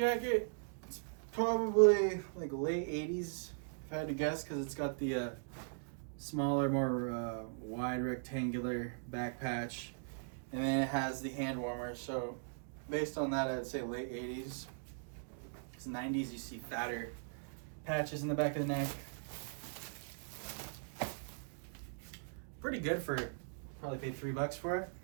It's probably like late 80s, if I had to guess, because it's got the smaller, more wide rectangular back patch. And then it has the hand warmer. So based on that, I'd say late 80s. Because 90s, you see fatter patches in the back of the neck. Pretty good for it. Probably paid $3 for it.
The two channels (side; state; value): left; silent; digital silence